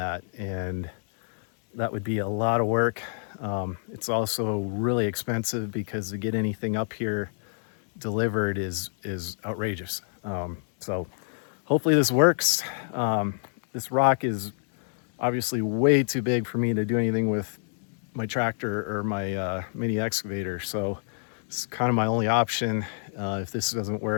And that would be a lot of work. It's also really expensive because to get anything up here delivered is outrageous. So hopefully this works. This rock is obviously way too big for me to do anything with my tractor or my mini excavator. So it's kind of my only option. If this doesn't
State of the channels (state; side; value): silent; right; digital silence